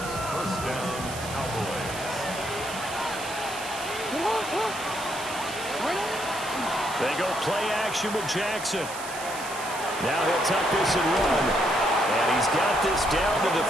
1st down, Cowboys. They go play action with Jackson. Now he'll tuck this and run. And he's got this down to the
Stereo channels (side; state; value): right; noise; hiss, 11 dB below the sound